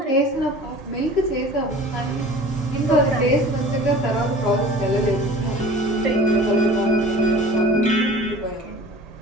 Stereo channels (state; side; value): normal; both; correlation 0.42